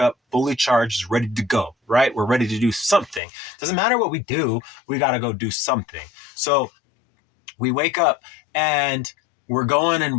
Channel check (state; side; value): drops out; right; at 3.2 s